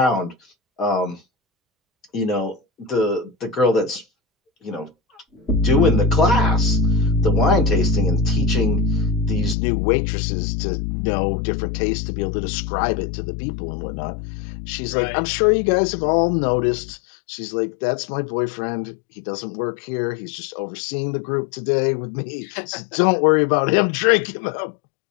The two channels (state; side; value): drops out; right; at 9.6 s